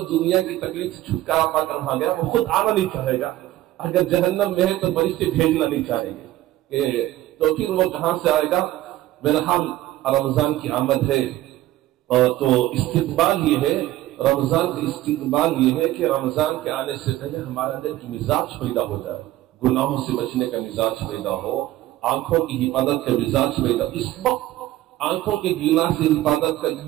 دنیا کی تکلیف سے چھٹکارا پا کر وہاں گیا، وہ خود آنا نہیں چاہے گا. اگر جہنم میں ہے تو فرشتے بھیجنا نہیں چاہیں گے تو پھر وہ کہاں سے آئے گا. بہرحال رمضان کی آمد ہے تو استقبال یہ ہے رمضان کا استقبال یہ ہے کہ رمضان کے آنے سے پہلے ہمارے اندر کی مزاج پیدا ہو جائے، گناہوں سے بچنے کا مزاج پیدا ہو، آنکھوں کی حفاظت کا مزاج پیدا. اس وقت آنکھوں کے گناہ سے حفاظت کا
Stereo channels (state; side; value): quieter; left; 15.3 dB